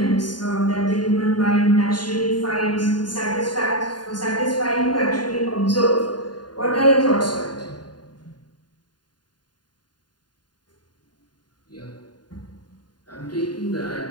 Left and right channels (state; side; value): late; right; 0.70 ms